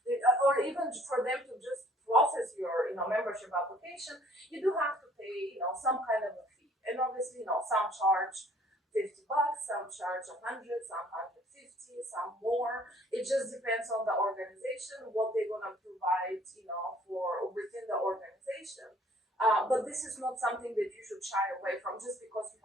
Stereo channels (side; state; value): both; normal; correlation 0.57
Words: or even for them to just process your membership application, you do have to pay some kind of a fee. And obviously, some charge $50, some charge 100, some 150, some more. It just depends on the organization, what they're gonna provide, for within the organization. But this is not something that you should shy away from just because you